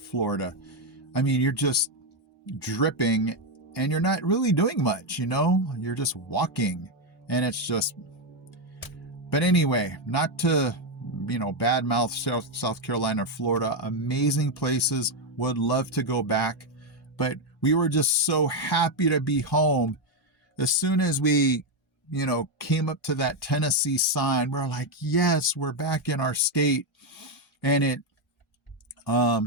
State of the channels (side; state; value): both; normal; correlation 0.05